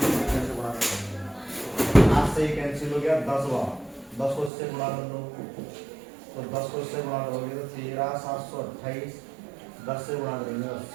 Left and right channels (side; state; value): left; drops out; at 4.5 s